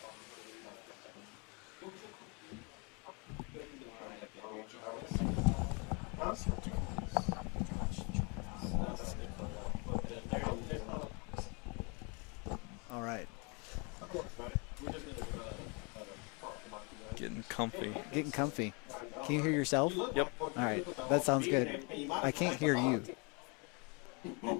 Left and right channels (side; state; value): right; quieter; 32.3 dB